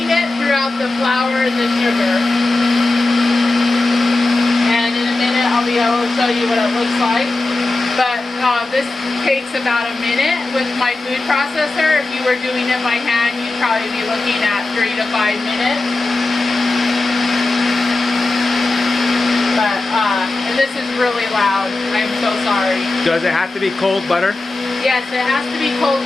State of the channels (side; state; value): right; quieter; 3.1 dB